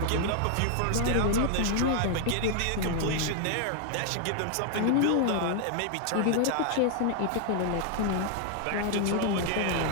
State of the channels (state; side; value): different; both; correlation 0.00